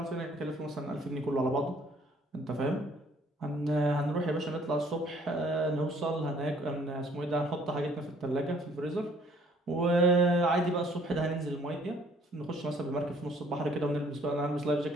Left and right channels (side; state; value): both; normal; correlation 0.60